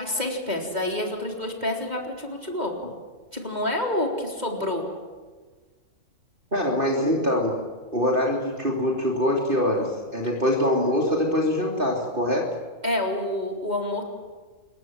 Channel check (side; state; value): left; late; 2.1 ms